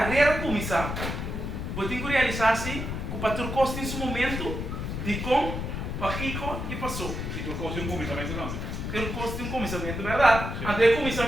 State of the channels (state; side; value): noise; left; rumble, 4 dB below the sound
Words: começar, você tem que realizar-se que para ter custo nesse momento de como para rico e passou. Se tu fosse começamento não. Ter custo um começamento, verdade? Até o